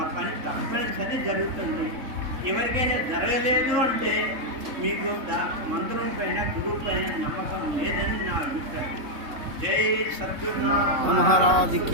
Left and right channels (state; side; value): late; left; 3.7 ms